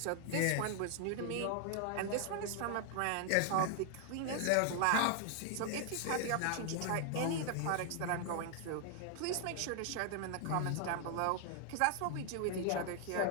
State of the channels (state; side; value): different; both; correlation 0.00